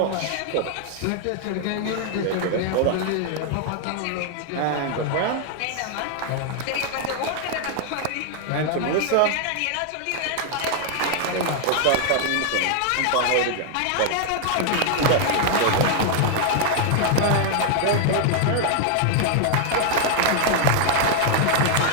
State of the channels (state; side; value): different; both; correlation 0.00